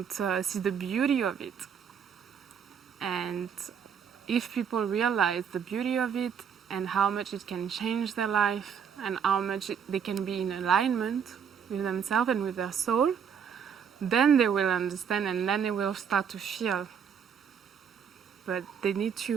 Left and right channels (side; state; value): left; quieter; 7.4 dB